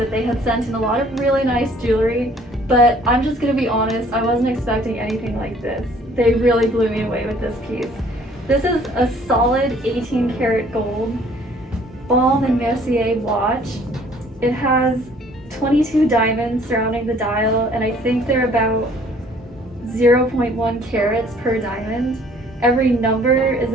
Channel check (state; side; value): normal; both; correlation 0.57